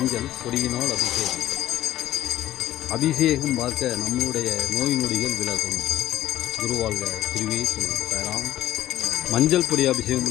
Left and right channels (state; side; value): quieter; right; 13.5 dB